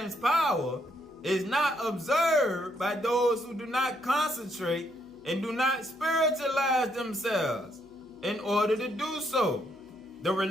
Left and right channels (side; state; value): right; noise; hum, 29 dB below the sound